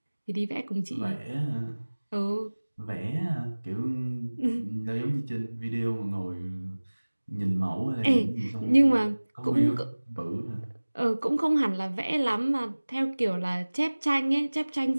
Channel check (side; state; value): both; inverted; correlation -1.00